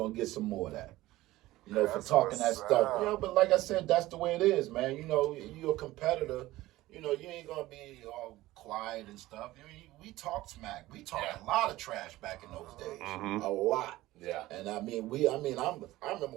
get some more of that. For talking that stuff. But like I said, that's the way it is, man. You're a competitor, you ain't gonna be all quiet and stuff. We talk smack. We talked a lot of trash back in those days. A lot. Yeah. And I remember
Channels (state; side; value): quieter; left; 17.2 dB